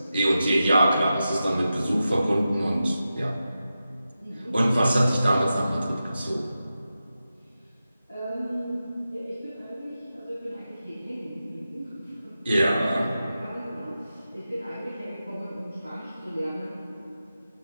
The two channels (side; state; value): both; inverted; correlation -0.92